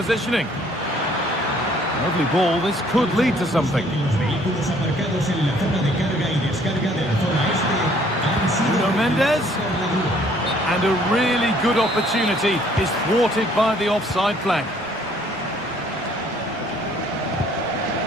Lovely ball. This could lead to something. Nuno Mendes. And a really good opportunity is thwarted by the offside flag.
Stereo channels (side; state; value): both; normal; correlation 0.61